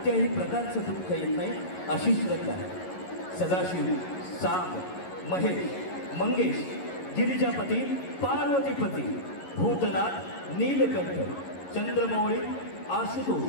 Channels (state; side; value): late; right; 11 ms